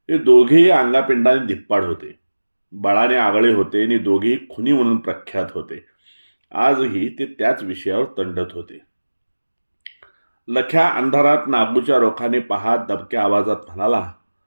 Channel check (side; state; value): both; inverted; correlation -1.00